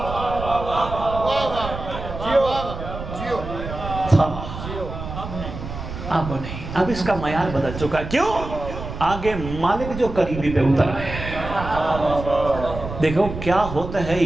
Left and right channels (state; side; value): noise; right; rumble, 9 dB below the sound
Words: تھا اب نہیں، اب اس کا معیار بدل چکا۔ کیوں؟ آگے مالک جو قریبی پہ اتر ہے۔ دیکھو کیا ہوتا ہے